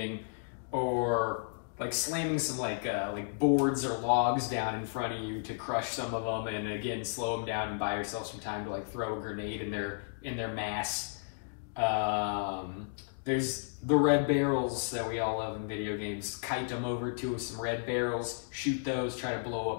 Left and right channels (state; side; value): silent; right; digital silence